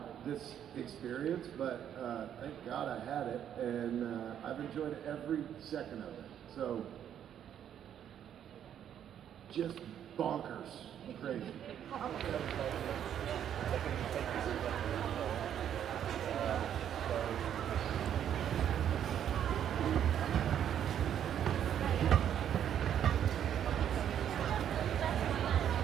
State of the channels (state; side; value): quieter; left; 9.7 dB